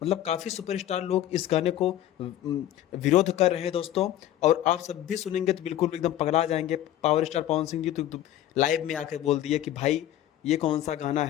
काफ़ी सुपरस्टार लोग इस गाने को विरोध कर रहे हैं दोस्तों। और आप सब भी सुनेंगे तो बिल्कुल एकदम पगला जाएंगे। पावर स्टार पवन सिंह जी तो लाइव में आकर बोल दिए कि भाई ये कौन सा गाना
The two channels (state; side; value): quieter; right; 12.6 dB